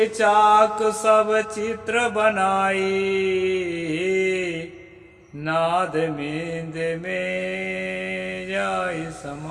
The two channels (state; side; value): identical; both; correlation 1.00